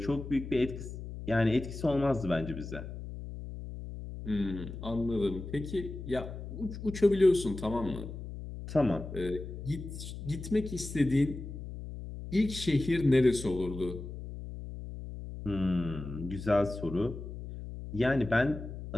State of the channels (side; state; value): left; noise; hum, 9 dB below the sound